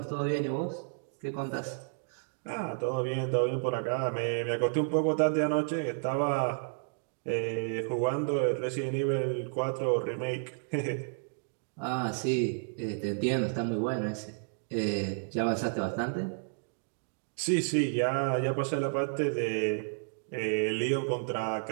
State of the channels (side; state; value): left; silent; digital silence